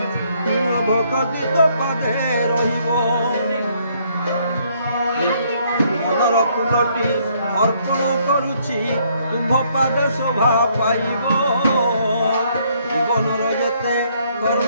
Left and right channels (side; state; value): both; inverted; correlation -0.68